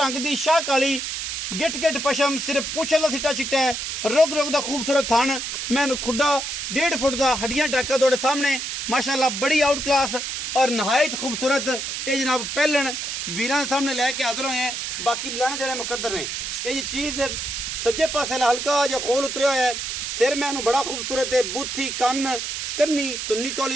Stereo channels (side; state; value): right; noise; hiss, 4 dB below the sound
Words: दी शाह काली गिट गिट पशम सिर्फ पूछल दा सिट्टा चिट्टा है। रोग रोग दा खूबसूरत थान मैं खुड्डा 1.5 फुट दा हड्डियां टाका तोड़े सामने माशाल्लाह बड़ी आउट क्लास और नहायत खूबसूरत ये जनाब पहलन वीरां दे सामने लैके हाजिर होए हैं। बाकी लैने देने मुकद्दर ने। ये चीज सज्जे पासे हल्का जो खोल उतरिया है। सिर मैनू बड़ा खूबसूरत है। बूथी कन्न कन्नी तुन्नी